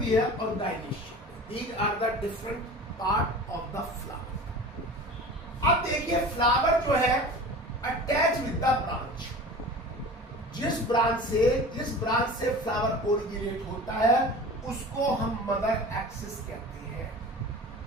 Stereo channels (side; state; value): both; normal; correlation 0.37